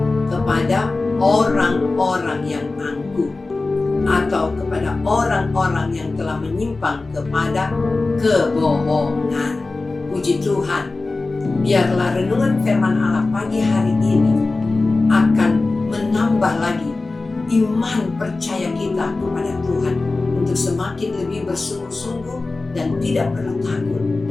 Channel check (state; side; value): quieter; right; 3.5 dB